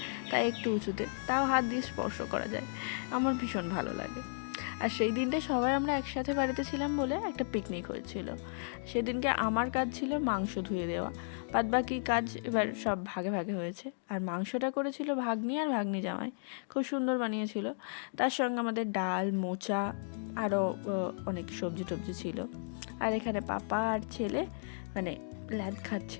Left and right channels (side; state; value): right; silent; digital silence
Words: তাই একটু উঁচুতে, তাও হাত দিয়ে স্পর্শ করা যায়। আমার ভীষণ ভালো লাগে। আর সেই দিনটা সবাই আমরা একসাথে বাড়িতে ছিলাম বলে একটা পিকনিক হয়েছিল। সেদিনকে আমার কাজ ছিল মাংস ধুয়ে দেওয়া, বাদ বাকি কাজ এবার সব ভাগে ভাগে হয়েছে। আর মাংসটা করেছিল ভাগ্নি আর ভাগ্নি জামাই, খুব সুন্দর বানিয়েছিল। তার সঙ্গে আমাদের ডাল, মোচা, আরও অনেক সবজি টবজি ছিল। আর এখানে পাপা আর ছেলে মানে ল্যাদ